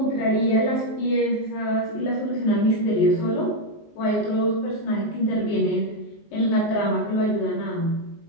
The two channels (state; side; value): late; right; 19 ms